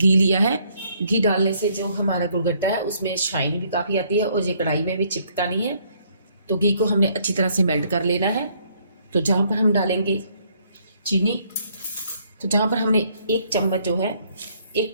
लिया है, घी डालने से जो हमारा गुड़गट्टा है उसमें शाइन भी काफ़ी आती है और ये कढ़ाई में भी चिपकता नहीं है। तो घी को हमने अच्छी तरह से मेल्ट कर लेना है। तो जहाँ पर हम डालेंगे चीनी, तो जहाँ पर हमने एक चम्मच जो है 1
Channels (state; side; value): inverted; both; correlation -0.67